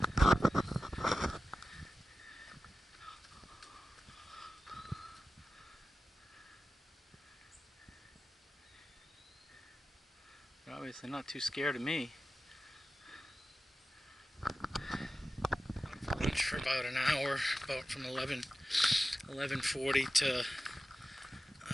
obviously not too scared of me. Lunch for about an hour, about from 11:40 to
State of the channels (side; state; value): both; normal; correlation 0.94